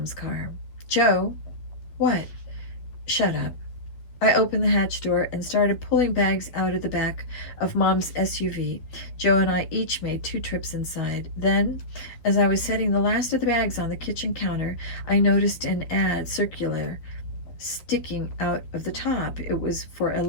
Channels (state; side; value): late; right; 12 ms